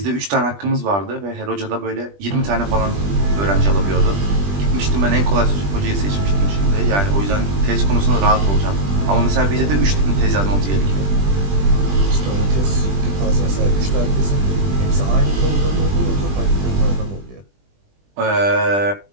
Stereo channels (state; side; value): late; left; 20 ms